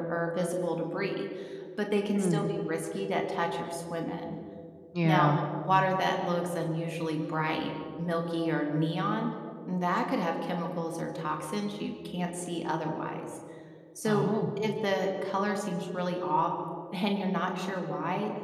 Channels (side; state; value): both; identical; correlation 1.00